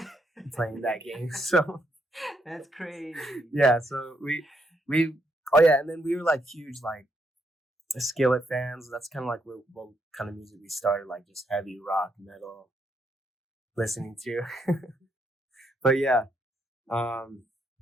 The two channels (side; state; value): both; normal; correlation 0.76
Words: playing that game. So that's crazy. Yeah, so we oh yeah, and then we were like huge like Skillet fans. That's kind of like what kind of music we started, like just heavy rock, metal, listening to. But yeah, I